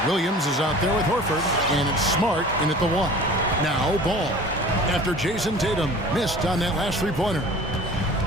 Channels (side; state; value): both; normal; correlation 0.43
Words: Williams is out there with Horford, and it's Smart in at the 1. Now Ball, after Jason Tatum missed on that last three-pointer.